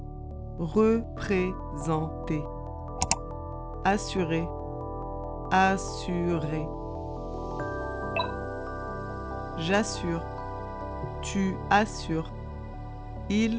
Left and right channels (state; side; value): identical; both; correlation 1.00